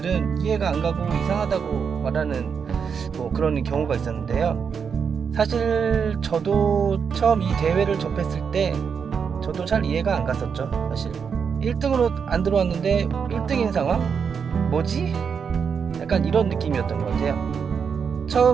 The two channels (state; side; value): quieter; left; 6.5 dB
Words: 이해가 안 가고 이상하다고 말하는 그런 경우가 있었는데요. 사실 저도 처음 이 대회를 접했을 때 저도 잘 이해가 안 갔었죠. 사실 1등으로 안 들어왔는데 1등인 상황? 뭐지? 약간 이런 느낌이었던 것 같아요.